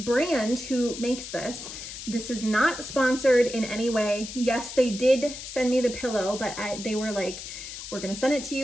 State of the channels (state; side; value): noise; left; hiss, 10 dB below the sound